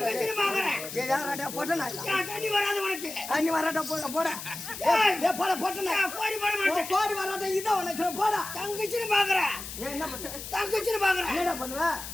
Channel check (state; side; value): noise; left; hiss, 10 dB below the sound